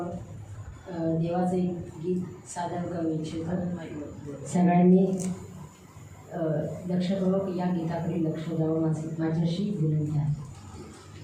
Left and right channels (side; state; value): both; identical; correlation 1.00